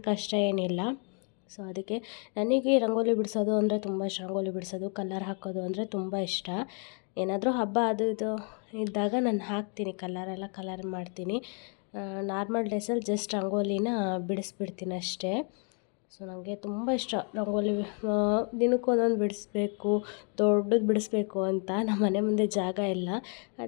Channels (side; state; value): right; quieter; 40.0 dB